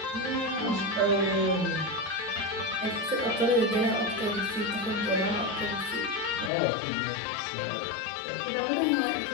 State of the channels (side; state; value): right; drops out; at 6.5 s